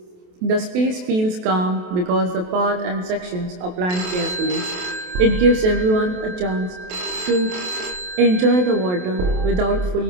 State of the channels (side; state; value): left; late; 28 ms